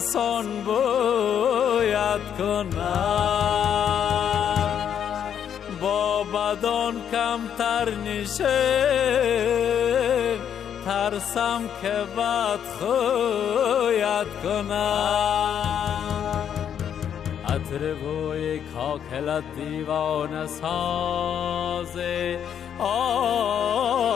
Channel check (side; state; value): right; quieter; 8.8 dB